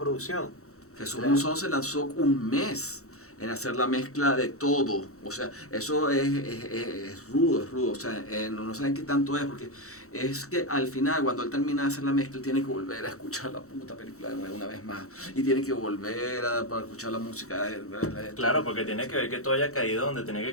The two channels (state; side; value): late; right; 0.64 ms